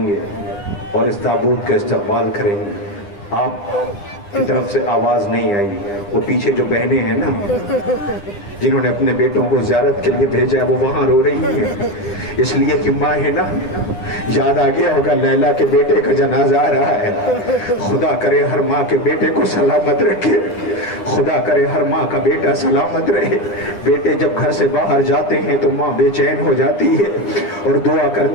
گے اور اس تابوت کا استقبال کریں گے آپ کی طرف سے آواز نہیں آئی وہ پیچھے جو بہنیں ہیں نا جنہوں نے اپنے بیٹوں کو زیارت کے لیے بھیجا ہے وہ وہاں رو رہی ہیں اس لیے کہ ماں ہے نا یاد آ گیا ہوگا لیلا کے بیٹے کا جنازہ آ رہا ہے خدا کرے ہر ماں کے بیٹے کو سلامت رکھے خدا کرے ہر ماں کا بیٹا سلامت رہے بیٹے جب گھر سے باہر جاتے ہیں تو ماں بے چین ہو جاتی ہے اور دعا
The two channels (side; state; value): right; late; 10 ms